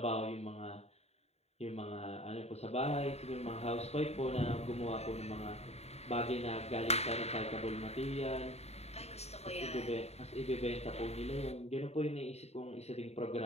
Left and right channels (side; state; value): right; late; 0.31 ms